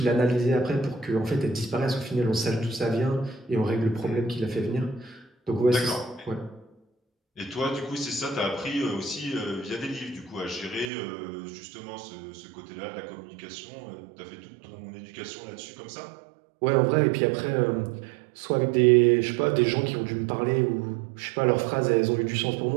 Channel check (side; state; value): left; drops out; at 10.9 s